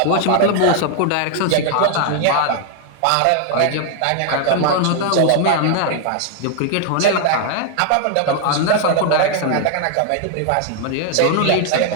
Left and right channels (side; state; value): both; different; correlation 0.00